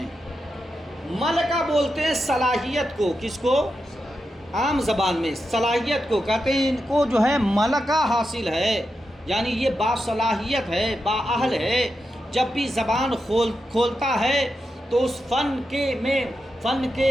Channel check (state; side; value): normal; both; correlation 0.88